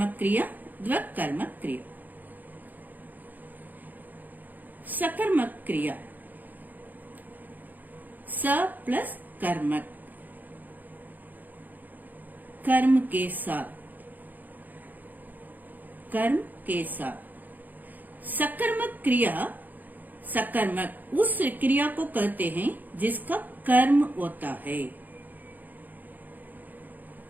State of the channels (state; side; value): late; left; 0.084 ms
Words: क्रिया, द्वकर्मक क्रिया। सकर्मक क्रिया स प्लस कर्मक, कर्म के साथ, कर्म के साथ। सकर्मक क्रिया, सकर्मक उस क्रिया को कहते हैं जिसका कर्म होता है।